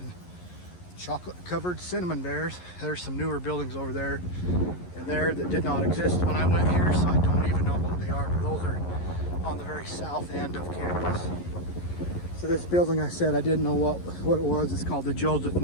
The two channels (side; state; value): right; late; 11 ms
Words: chocolate covered cinnamon bears. There's some newer buildings over there and there that did not exist when I went here, so I don't even know what they are, but those are on the very south end of campus. So this building, I said I didn't know what it was. It's called the Joseph